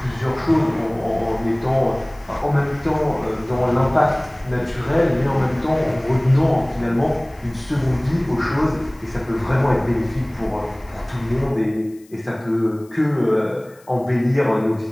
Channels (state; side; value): noise; left; hiss, 29 dB below the sound